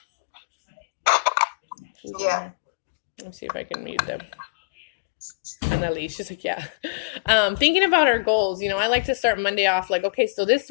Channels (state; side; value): quieter; right; 32.2 dB